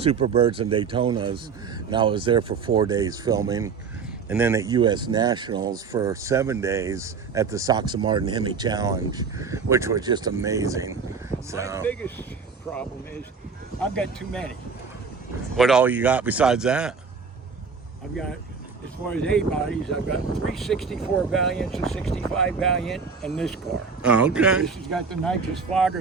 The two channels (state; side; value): quieter; left; 5.4 dB